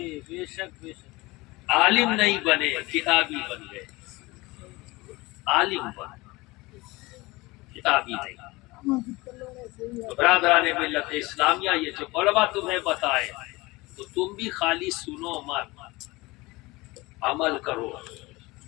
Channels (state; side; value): quieter; right; 22.1 dB